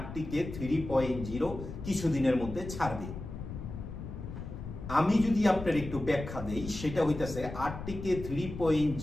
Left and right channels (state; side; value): noise; left; rumble, 9 dB below the sound